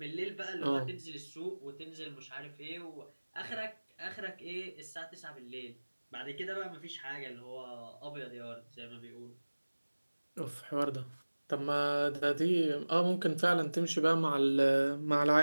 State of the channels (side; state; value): both; inverted; correlation -1.00